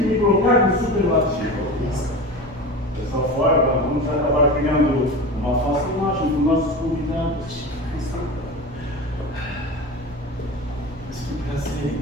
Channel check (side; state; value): both; normal; correlation 0.30